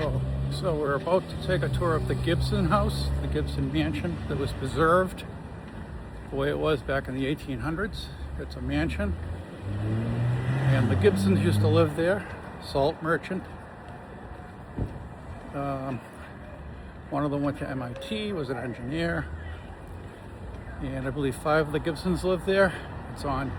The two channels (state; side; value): identical; both; correlation 1.00